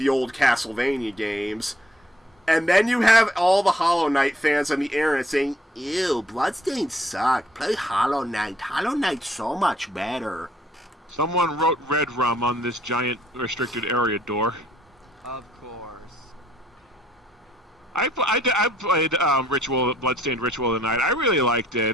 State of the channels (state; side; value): normal; both; correlation 0.66